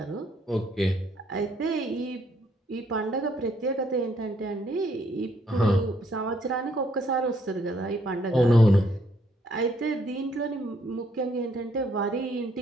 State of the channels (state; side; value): normal; both; correlation 0.69